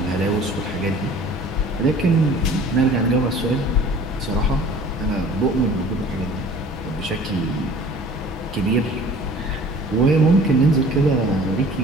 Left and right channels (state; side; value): normal; both; correlation 0.47